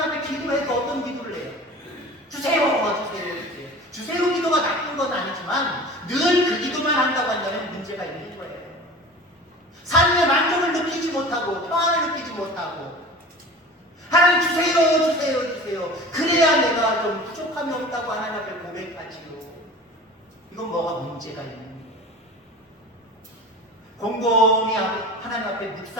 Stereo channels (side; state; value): both; normal; correlation 0.38